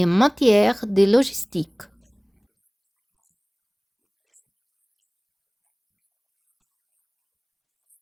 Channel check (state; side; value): identical; both; correlation 1.00